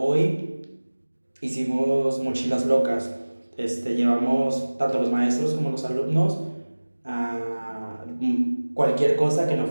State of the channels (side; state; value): both; inverted; correlation -1.00